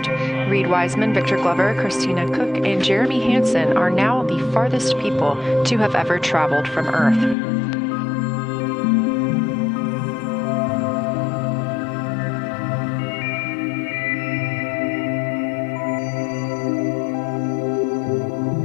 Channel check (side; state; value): right; drops out; at 7.4 s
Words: Reed Wiseman, Victor Glover, Christina Cook, and Jeremy Hansen are now the farthest people to have ever traveled from Earth.